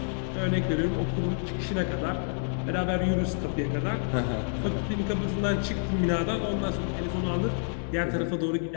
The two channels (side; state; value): right; silent; digital silence